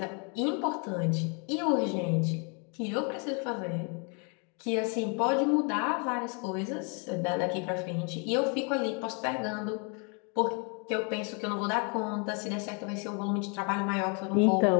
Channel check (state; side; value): quieter; right; 36.4 dB